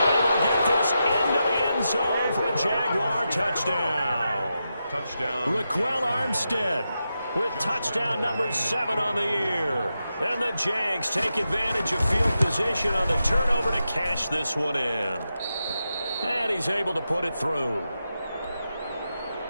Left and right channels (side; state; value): both; inverted; correlation -0.88